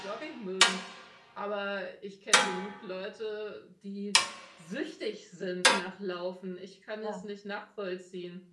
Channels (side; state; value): both; identical; correlation 1.00